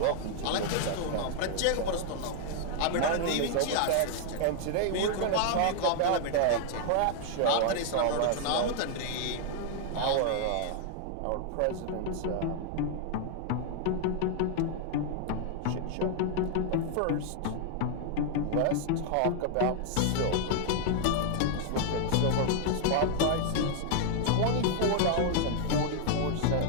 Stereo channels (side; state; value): both; different; correlation 0.00